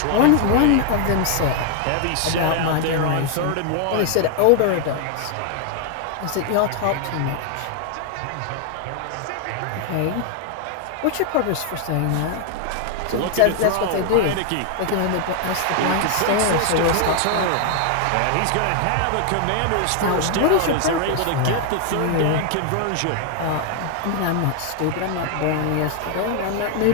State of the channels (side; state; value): both; different; correlation 0.00